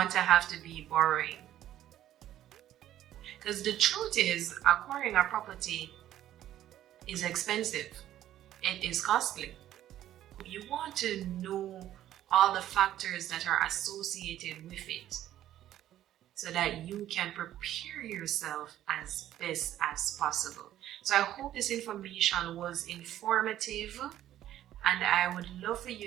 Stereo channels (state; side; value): quieter; left; 12.5 dB